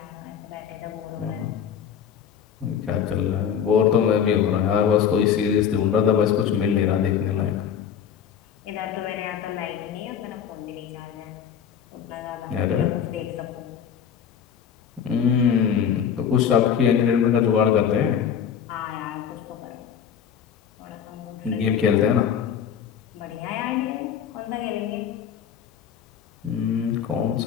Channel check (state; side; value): quieter; right; 8.2 dB